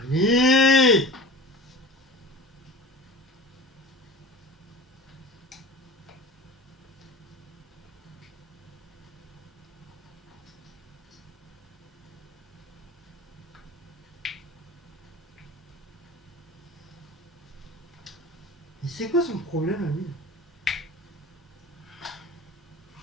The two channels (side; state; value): both; normal; correlation 0.36